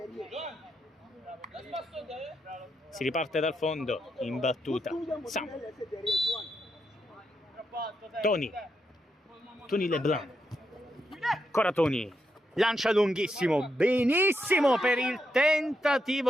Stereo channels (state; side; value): normal; both; correlation 0.82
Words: Si riparte dal fondo in battuta. Samuel. Toni Leblanc. Ancora Toni. Lancia lunghissimo, benissimo per il